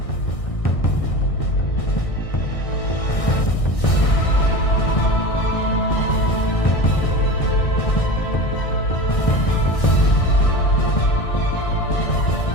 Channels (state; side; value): late; right; 1.6 ms